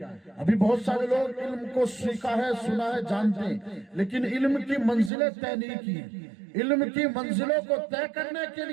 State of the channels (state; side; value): drops out; left; at 5.1 s